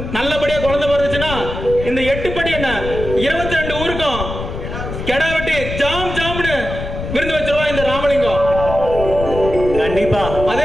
நல்லபடியா குழந்தை பிறந்துச்சுன்னா இந்த 8 படி என்ன 22 ஊருக்கும் கெடா வெட்டி ஜாம் ஜாம்னு விருந்து வச்சிருவா இந்த ராமலிங்கம். கண்டிப்பா. அதே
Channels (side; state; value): left; noise; rumble, 7 dB below the sound